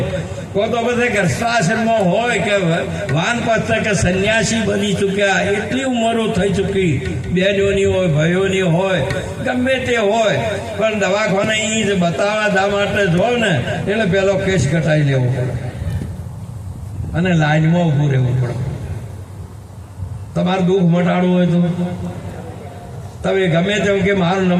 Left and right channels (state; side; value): identical; both; correlation 1.00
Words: તો પછી ગર્ભાશ્રમમાં હોય કે વાનપ્રસ્થ કે સંન્યાસી બની ચૂક્યા, એટલી ઉંમરો થઈ ચૂકી, બહેનોની હોય, ભાઈઓની હોય, ગમે તે હોય, પણ દવાખાને એ જ બતાવવા દા માટે જો ને એટલે પેલો કેસ ઘટાઈ લેવો પડે અને લાઈનમાં ઊભું રહેવું પડે. તમારું દુઃખ મટાડવું હોય તો તમે ગમે તેમ કે મારો